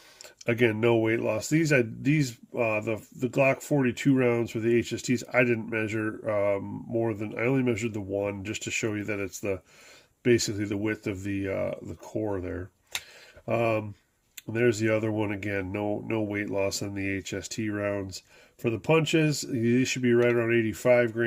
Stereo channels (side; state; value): both; identical; correlation 1.00